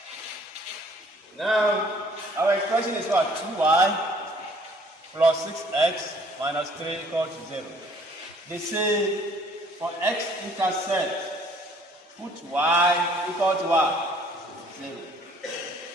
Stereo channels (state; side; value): normal; both; correlation 0.58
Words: Now our expression is what? 2y plus 6x minus 3 equal to 0. They say for x-intercept, put y equal to what? 0.